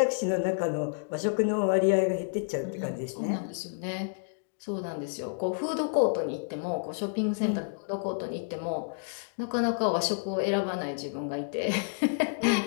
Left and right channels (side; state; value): right; silent; digital silence